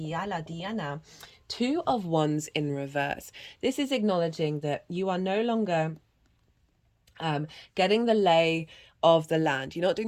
2 of Wands in reverse. This is acknowledging that you are no longer getting the lay of the land. You're not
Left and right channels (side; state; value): both; identical; correlation 1.00